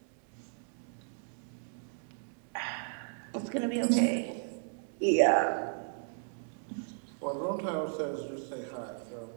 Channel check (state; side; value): silent; left; digital silence